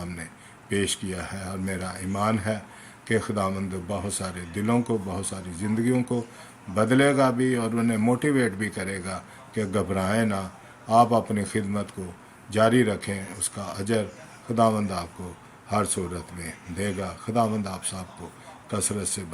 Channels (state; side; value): identical; both; correlation 1.00